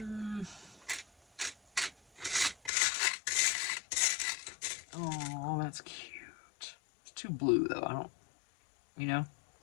Oh, that's cute. It's too blue, though. I don't, you know?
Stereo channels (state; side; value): drops out; right; at 2.7 s